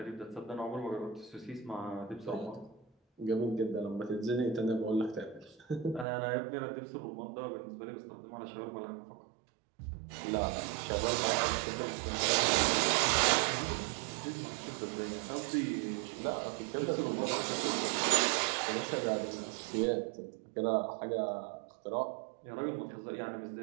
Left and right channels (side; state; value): left; drops out; at 6.1 s